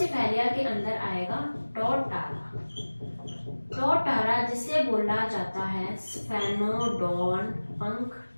के अंदर आएगा टोटारा। टोटारा जिसे बोला जाता है स्फेनोडोन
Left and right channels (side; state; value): both; inverted; correlation -1.00